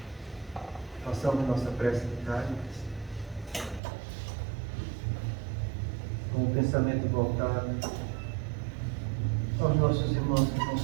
Façamos nossa prece de Cáritas, com o pensamento voltado aos nossos irmãos que estão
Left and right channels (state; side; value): drops out; left; at 3.8 s